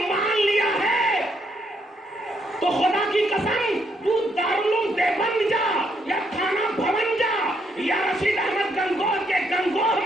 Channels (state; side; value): normal; both; correlation 0.75